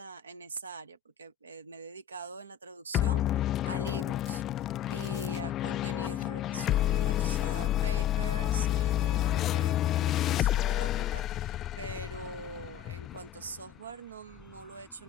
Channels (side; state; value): right; quieter; 10.5 dB